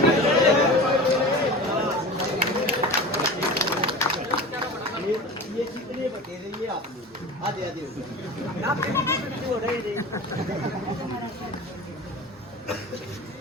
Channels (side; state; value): both; normal; correlation 0.33